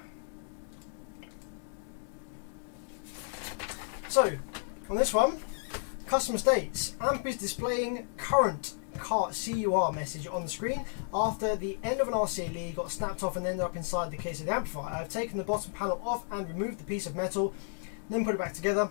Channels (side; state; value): right; silent; digital silence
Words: So, on this one, customer states, amp is displaying current CUR message on the screen after the end of an RCA lead got snapped off and ended up inside the case of the amplifier. I've taken the bottom panel off and removed the piece of metal, then put it back together.